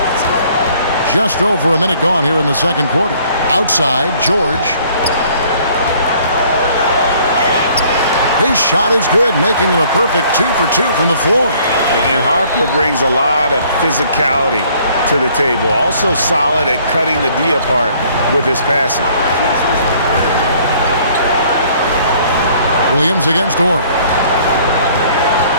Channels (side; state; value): both; inverted; correlation -0.59